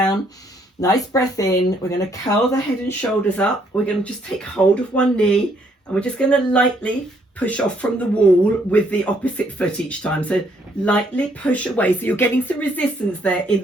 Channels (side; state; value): both; normal; correlation 0.69